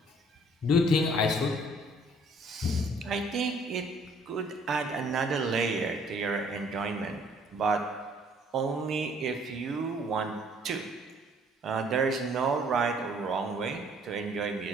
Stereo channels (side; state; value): both; normal; correlation 0.59